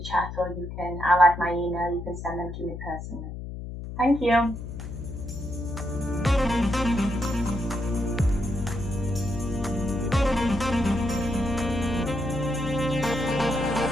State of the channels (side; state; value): left; noise; hum, 9 dB below the sound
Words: chat, or I'll add my email. You can send them to me personally. Thank you.